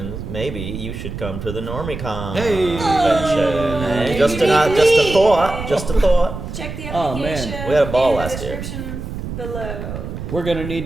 maybe you should come to the NormieCon convention. Hey, just a thought. Check the application. Oh, man. We had a ball in last the year. description below. We're going to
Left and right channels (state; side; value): noise; right; rumble, 8 dB below the sound